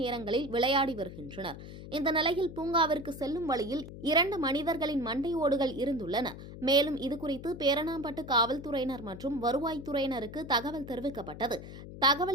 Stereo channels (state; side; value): noise; left; hum, 12 dB below the sound